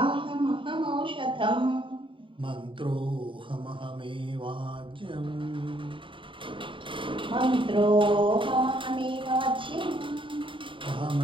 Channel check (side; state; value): left; late; 0.25 ms